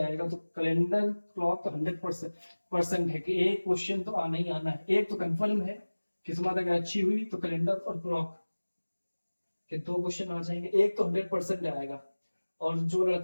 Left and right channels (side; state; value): both; inverted; correlation -1.00